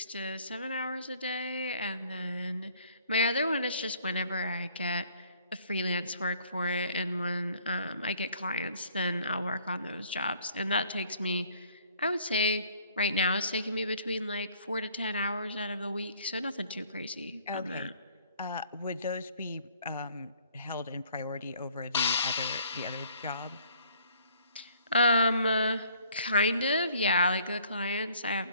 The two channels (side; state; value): both; inverted; correlation -0.59